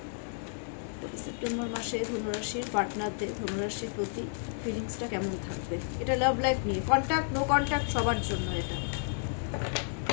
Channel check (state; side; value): silent; right; digital silence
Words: সেপ্টেম্বর মাসে ধনুরাশির পার্টনারদের ধনুরাশির প্রতি ফিলিংসটা কেমন থাকবে, এটা লাভ লাইফ নিয়ে, কন্ট্যাক্ট নো কন্ট্যাক্ট সবার জন্য এটা।